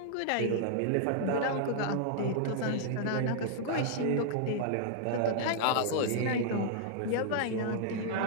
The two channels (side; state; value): both; different; correlation -0.01